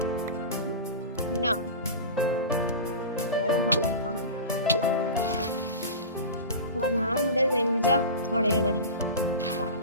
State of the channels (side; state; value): both; inverted; correlation -0.30